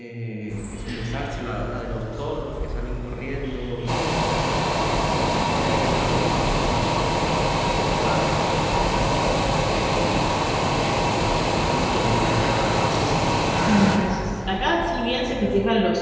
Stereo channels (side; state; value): both; identical; correlation 1.00